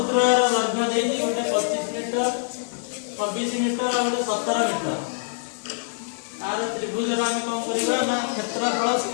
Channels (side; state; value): right; silent; digital silence